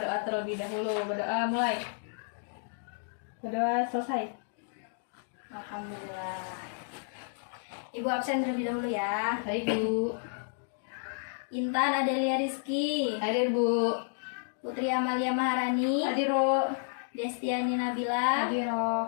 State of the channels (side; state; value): right; silent; digital silence